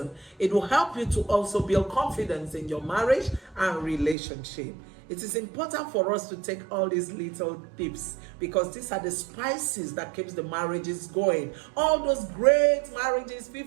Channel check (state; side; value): drops out; left; at 4.2 s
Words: It will help you to also build confidence in your marriage and relationship. It is important for us to take all these little tips because these are the spices that keeps the marriages going. All those great marriages,